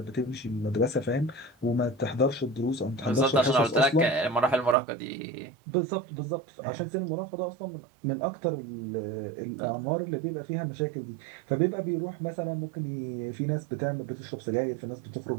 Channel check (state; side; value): drops out; left; at 4.8 s